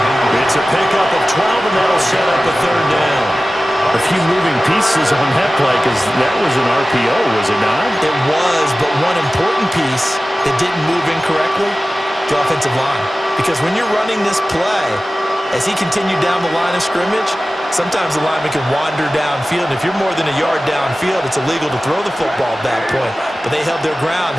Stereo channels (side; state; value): both; normal; correlation 0.96